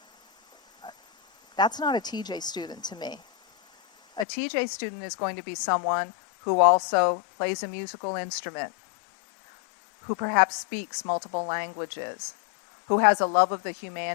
that's not a TJ student to me. A TJ student is going to be someone who also plays a musical instrument, who perhaps speaks multiple languages, who has a love of the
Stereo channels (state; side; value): drops out; right; at 4.2 s